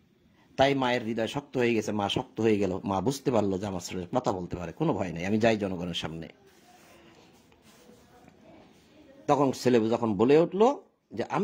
তাই মায়ের হৃদয় শক্ত হয়ে গেছে, মা শক্ত হয়ে গেল, মা বুঝতে পারলো যে আমার ছেলে কথা বলতে পারে, কোনো ভয় নেই, আমি যাই জনগণের সামনে। তখন ছেলে যখন বলে উঠলো যে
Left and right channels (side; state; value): both; identical; correlation 1.00